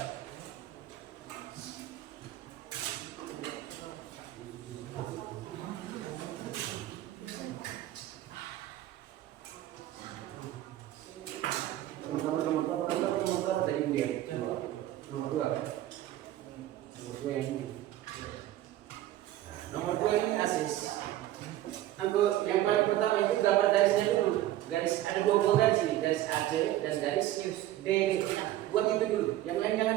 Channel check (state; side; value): quieter; left; 14.0 dB